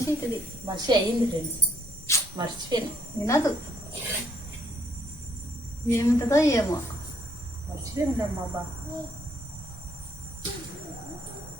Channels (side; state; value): both; normal; correlation 0.68